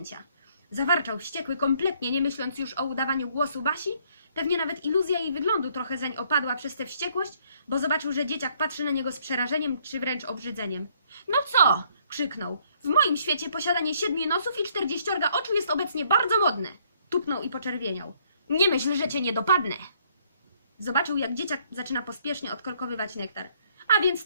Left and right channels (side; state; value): both; inverted; correlation -0.66